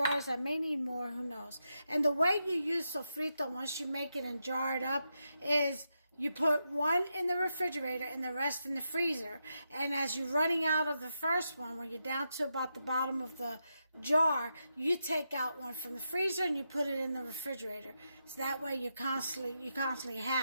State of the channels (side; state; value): both; inverted; correlation -0.85